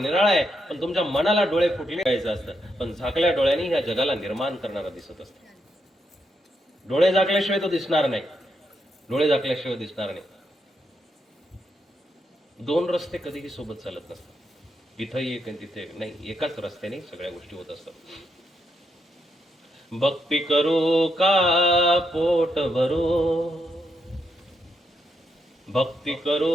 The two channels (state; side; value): normal; both; correlation 0.81